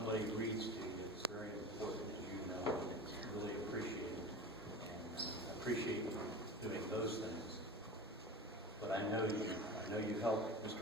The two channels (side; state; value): both; normal; correlation 0.32